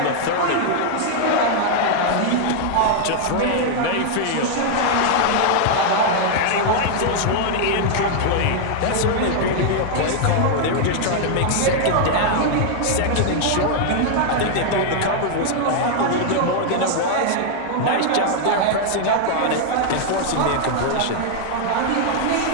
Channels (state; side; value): different; both; correlation 0.00